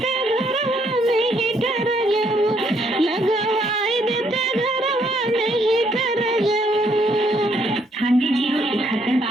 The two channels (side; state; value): both; normal; correlation 0.70